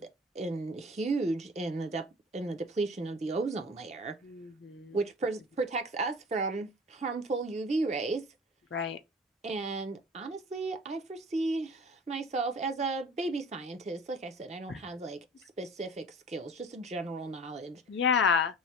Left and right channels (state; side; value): normal; both; correlation 0.43